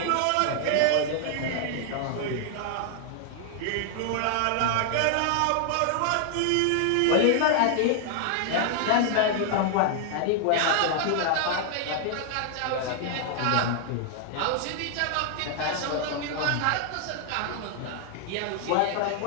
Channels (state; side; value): different; both; correlation 0.00